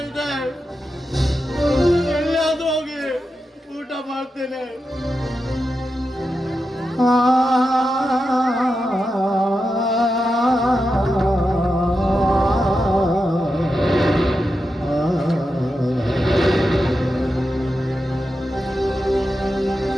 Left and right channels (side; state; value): both; normal; correlation 0.89